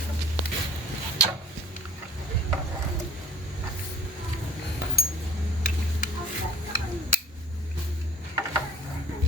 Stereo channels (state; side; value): normal; both; correlation 0.49